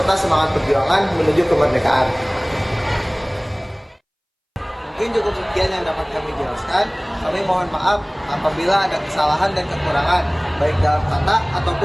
semangat perjuangan menuju kemerdekaan. Mungkin cukup sekian yang dapat kami jelaskan. Kami mohon maaf apabila ada kesalahan dan kekurangan, baik dalam kata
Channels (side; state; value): both; identical; correlation 1.00